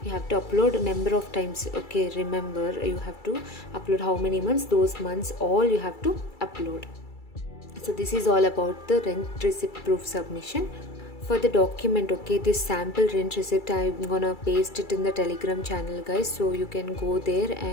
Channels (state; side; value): late; right; 2.3 ms